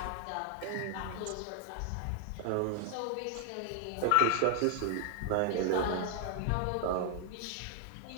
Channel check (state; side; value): different; both; correlation 0.00